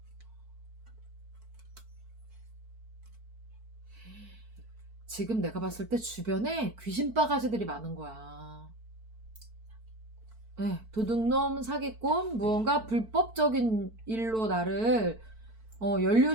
지금 내가 봤을 때 주변에 귀신 바가지들이 많은 거야. 네, 도둑놈, 사기꾼, 무언가 불법적인 일로 나를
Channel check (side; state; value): left; late; 4.5 ms